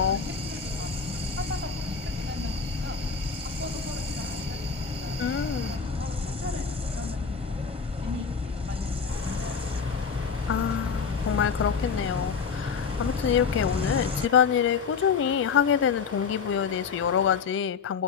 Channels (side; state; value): right; quieter; 5.9 dB